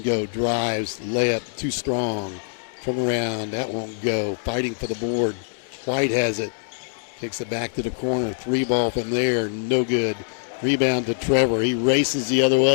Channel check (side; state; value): right; silent; 63 dB below the other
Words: go. Drives. Layup. Too strong. Turn around. That won't go. Fighting for the board. White has it. Kicks it back to the corner. 3-ball from there. No good. Rebound to Trevor. He races the other